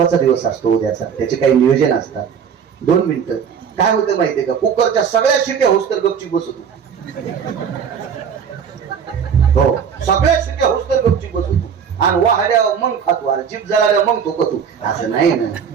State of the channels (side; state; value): left; quieter; 7.3 dB